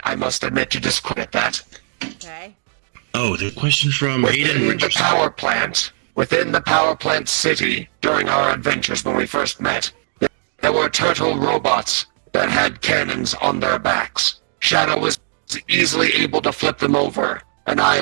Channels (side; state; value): left; silent; digital silence